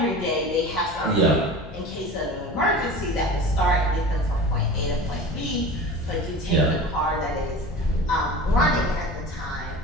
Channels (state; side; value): normal; both; correlation 0.35